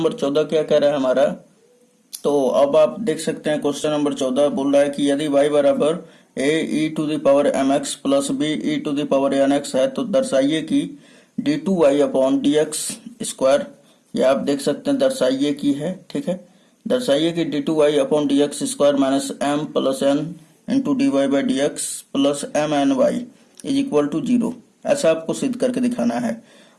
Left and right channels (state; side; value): identical; both; correlation 1.00